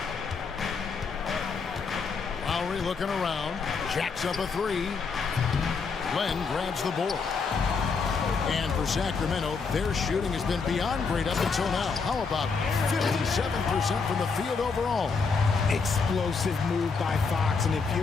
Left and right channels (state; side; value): quieter; right; 5.0 dB